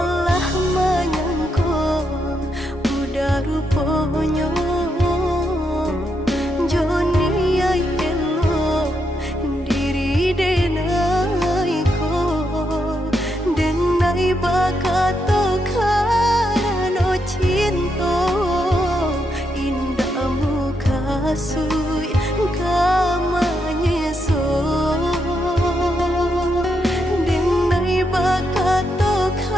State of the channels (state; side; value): normal; both; correlation 0.81